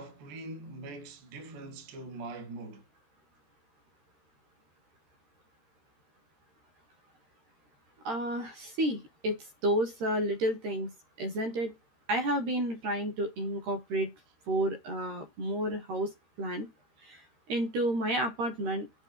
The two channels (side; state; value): left; late; 13 ms